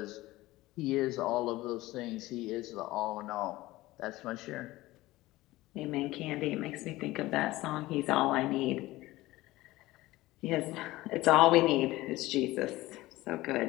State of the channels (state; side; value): quieter; right; 18.2 dB